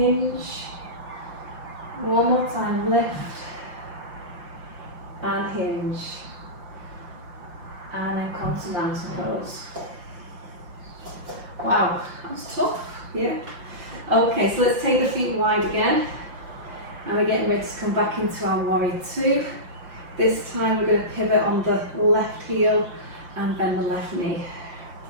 One more time, lift and hinge. And then come to mountain pose. Wow, that was tough, yeah. Okay, so let's take the feet wide again. And we're getting ready to come back into our warrior two. This time we're going to pivot on the left heel and bend the left knee.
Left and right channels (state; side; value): late; left; 5.8 ms